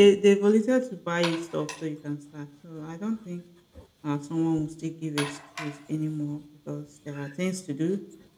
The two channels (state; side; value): identical; both; correlation 1.00